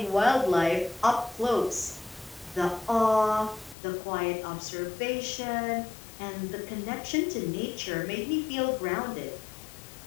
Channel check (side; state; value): right; drops out; at 3.8 s